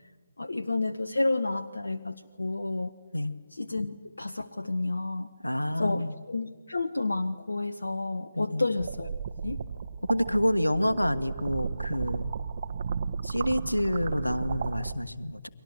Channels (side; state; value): both; inverted; correlation -0.94